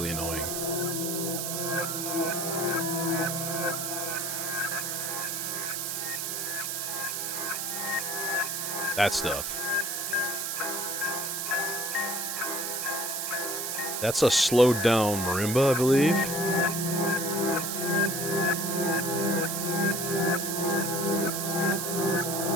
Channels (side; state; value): right; noise; hiss, 2 dB below the sound